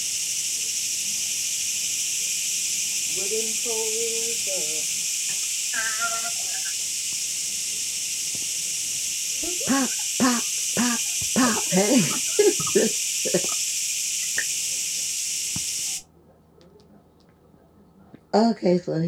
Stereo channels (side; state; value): both; identical; correlation 1.00